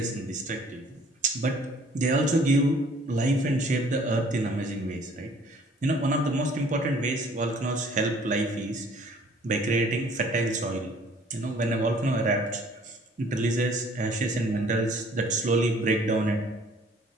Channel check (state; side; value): normal; both; correlation 0.56